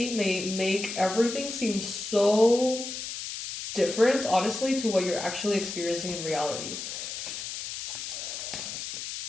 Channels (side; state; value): left; noise; hiss, 7 dB below the sound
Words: may make everything seem so different, honestly, to what you're actually experiencing in reality.